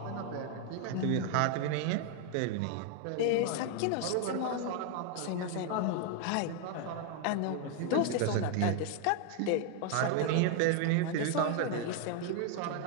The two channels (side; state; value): both; different; correlation 0.00